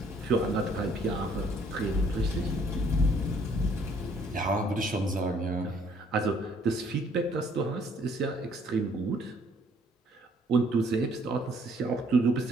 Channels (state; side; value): normal; both; correlation 0.63